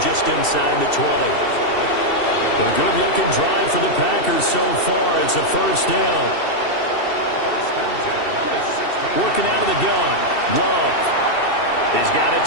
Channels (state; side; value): late; right; 2.7 ms